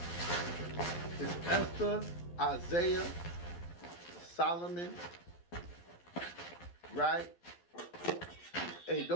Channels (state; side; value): late; right; 12 ms